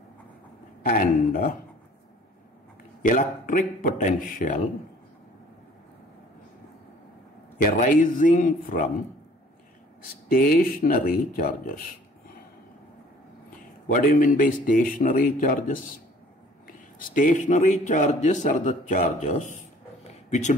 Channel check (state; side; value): normal; both; correlation 0.54